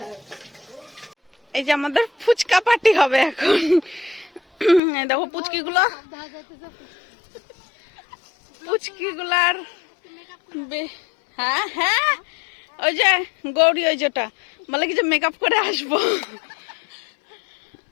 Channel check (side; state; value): right; drops out; at 4.8 s